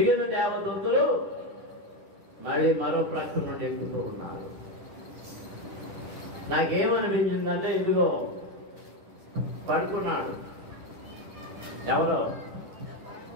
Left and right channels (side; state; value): left; late; 10 ms